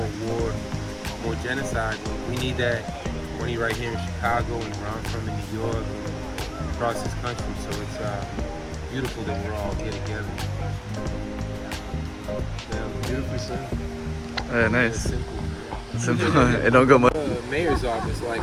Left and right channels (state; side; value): identical; both; correlation 1.00